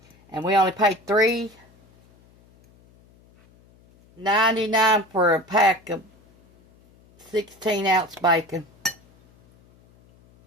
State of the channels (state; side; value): noise; left; hum, 30 dB below the sound